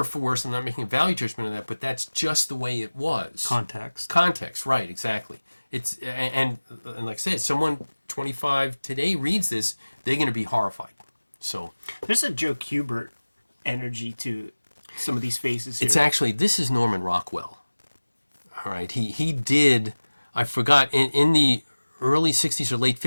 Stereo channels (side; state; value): both; inverted; correlation -1.00